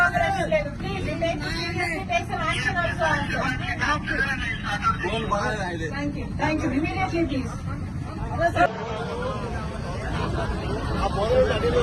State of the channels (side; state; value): both; identical; correlation 1.00